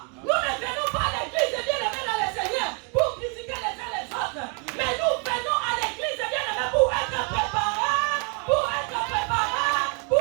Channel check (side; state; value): left; quieter; 36.6 dB